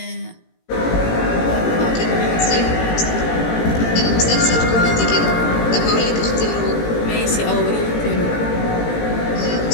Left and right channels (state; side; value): late; right; 18 ms